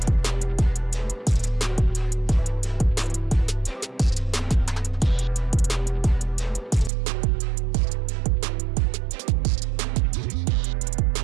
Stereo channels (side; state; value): left; drops out; at 6.9 s